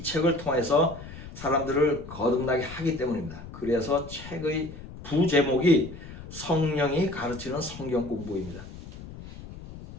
책을 통해서 사람들을 거듭나게 하기 때문입니다. 그래서 책의 부제목이 성령이 가르치는 성경 공부입니다.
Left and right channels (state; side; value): noise; left; rumble, 14 dB below the sound